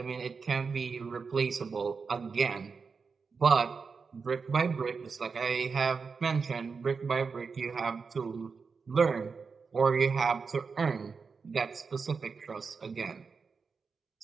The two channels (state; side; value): quieter; left; 5.1 dB